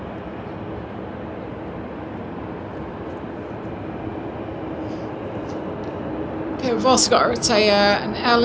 Okay, we've also got an Aer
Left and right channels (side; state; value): both; identical; correlation 1.00